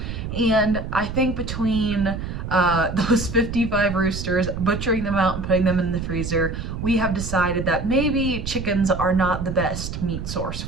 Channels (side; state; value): right; noise; rumble, 6 dB below the sound